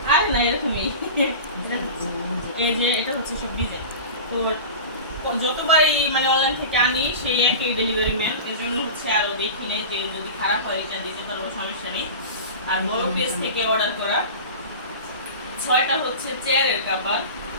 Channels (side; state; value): both; inverted; correlation -0.32